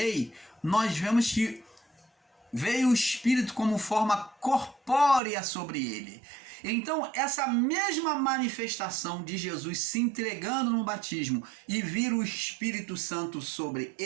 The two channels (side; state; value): left; drops out; at 5.2 s